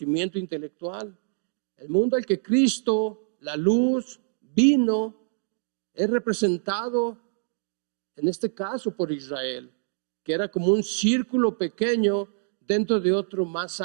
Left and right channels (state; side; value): silent; left; digital silence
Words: intelectual. El mundo al que Cristo, la luz, vino, es representado en este caso por Israel, que era como un círculo pequeño dentro de otro más